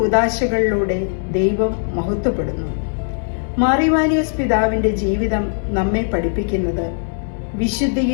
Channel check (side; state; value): right; silent; digital silence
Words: ദൈവം മഹത്വപ്പെടുന്നു. മാർ ഇവാനിയോസ് പിതാവിന്റെ ജീവിതം നമ്മെ പഠിപ്പിക്കുന്നത്